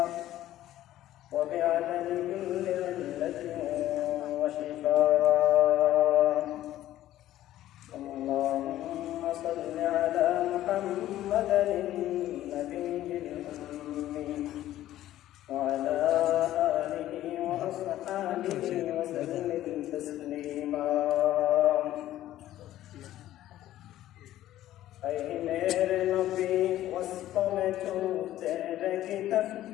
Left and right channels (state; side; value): quieter; right; 13.6 dB